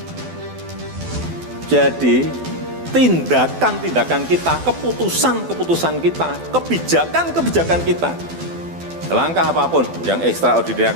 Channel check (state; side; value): late; left; 12 ms